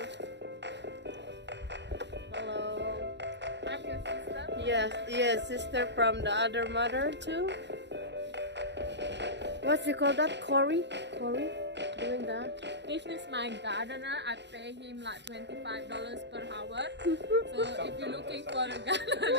Hello. I'm your sister. Yes, yes, sister from the other mother too. What's you call that? Corey? Corey? Doing that? This is my gardener. I pay him like $25 per hour. So if you're looking for a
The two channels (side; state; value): left; late; 0.51 ms